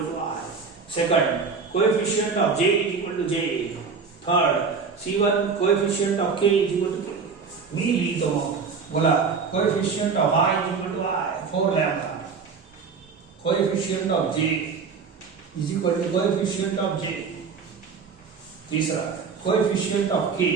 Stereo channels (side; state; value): left; quieter; 5.3 dB